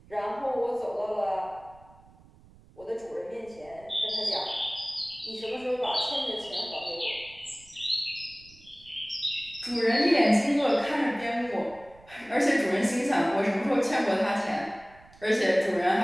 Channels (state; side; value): noise; right; rumble, 25 dB below the sound